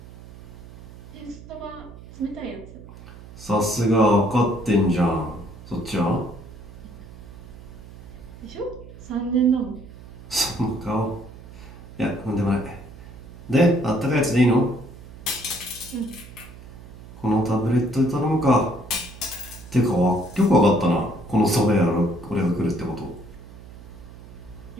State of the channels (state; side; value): noise; right; hum, 17 dB below the sound